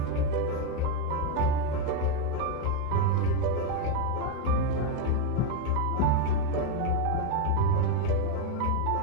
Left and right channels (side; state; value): both; different; correlation 0.02